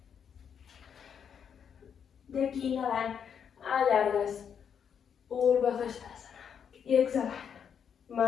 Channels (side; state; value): right; quieter; 7.6 dB